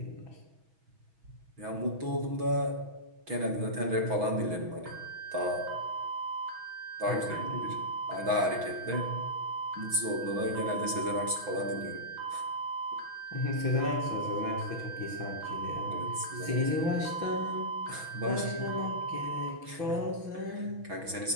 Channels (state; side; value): late; left; 6.2 ms